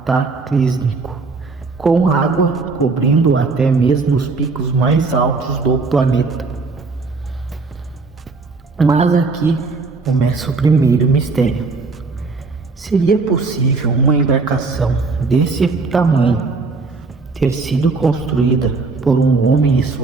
com água cobrindo até mesmo os picos mais altos do planeta. Mas aqui começa o primeiro mistério. Seria possível uma embarcação desse tamanho ter sido construída por um homem e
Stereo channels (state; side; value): quieter; left; 4.1 dB